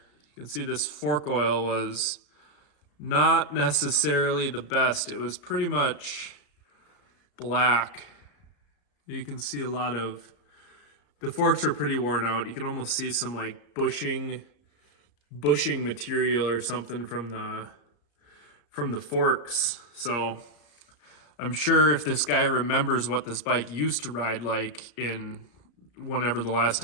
You can see this fork oil was not necessarily the best. It was pretty much black. You can see a lot of, the forks are pretty worn out. You can almost see some like bushing material or something from the forks. So I'm sure if this guy remembers what this bike used to ride like in whenever the last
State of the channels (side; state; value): right; late; 34 ms